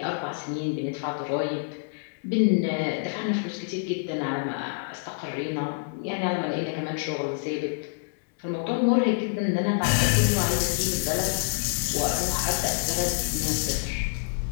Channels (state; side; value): silent; right; digital silence